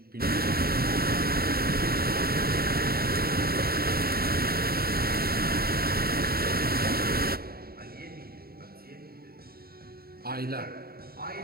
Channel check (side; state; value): left; late; 0.44 ms